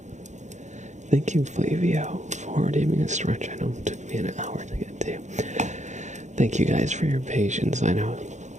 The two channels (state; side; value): late; left; 0.34 ms